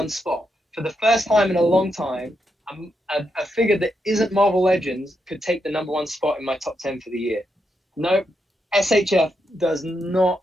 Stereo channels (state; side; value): normal; both; correlation 0.82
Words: spot. For the first time in a long time, a figure that isn't Marvel Legends could take the #1 spot in my top 10 for the year. No, SHF does not